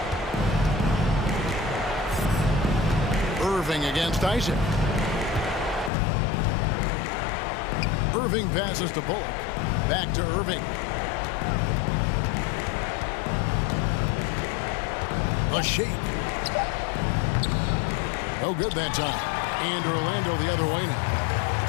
Irving against Isaac. Irving passes to Bullock. Back to Irving. A shake. No good that time. And Orlando the other way now.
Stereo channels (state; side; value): drops out; right; at 5.9 s